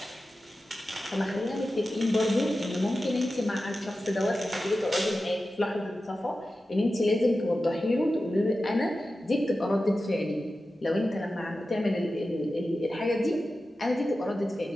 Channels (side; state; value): both; normal; correlation 0.93